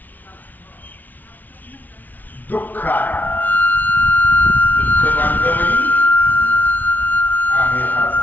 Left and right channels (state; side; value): late; right; 0.081 ms